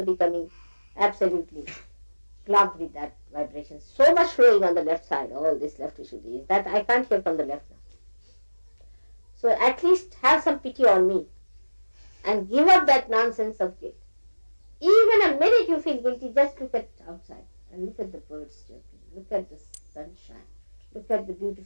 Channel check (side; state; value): both; inverted; correlation -1.00